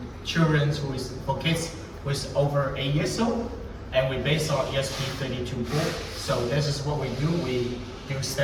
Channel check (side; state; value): both; identical; correlation 1.00